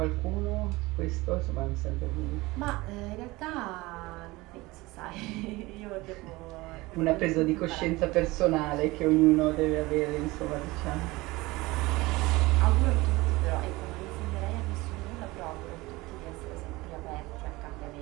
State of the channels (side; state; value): left; quieter; 21.1 dB